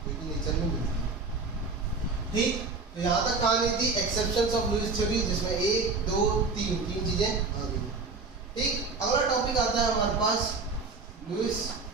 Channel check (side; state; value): left; quieter; 4.1 dB